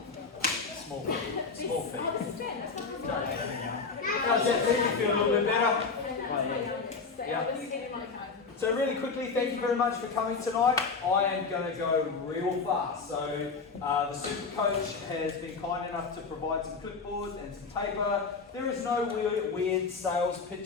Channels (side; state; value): right; quieter; 4.7 dB